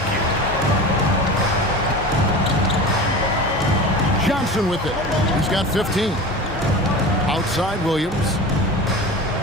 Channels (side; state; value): both; normal; correlation 0.33